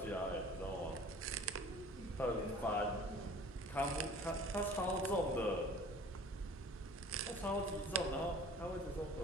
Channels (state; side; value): normal; both; correlation 0.46